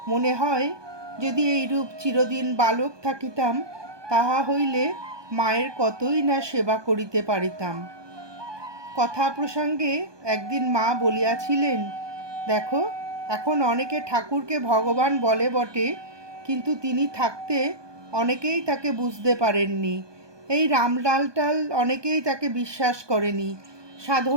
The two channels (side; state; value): left; late; 1.2 ms